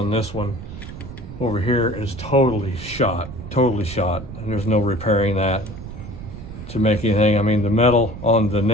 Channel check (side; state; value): right; noise; rumble, 12 dB below the sound